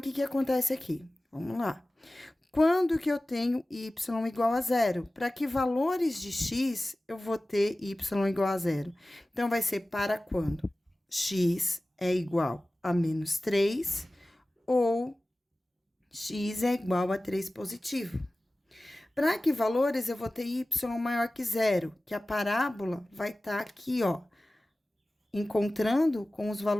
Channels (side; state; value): both; normal; correlation 0.97